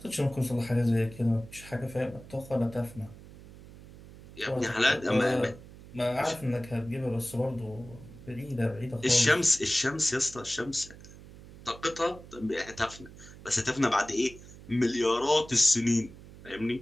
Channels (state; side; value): noise; right; hum, 18 dB below the sound